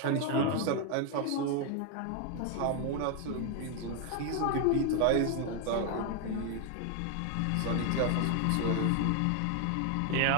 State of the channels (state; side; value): different; both; correlation 0.00